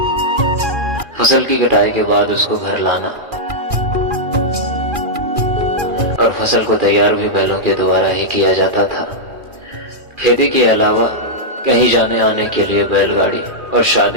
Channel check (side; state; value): left; late; 2.4 ms